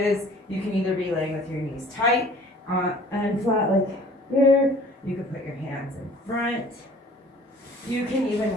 you can either be laying with your knees tight and flat like here. You can put your hands in front. You can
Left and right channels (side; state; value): both; normal; correlation 0.51